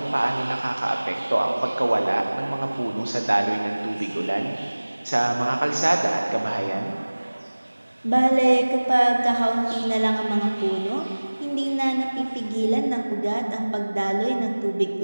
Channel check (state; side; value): inverted; both; correlation -1.00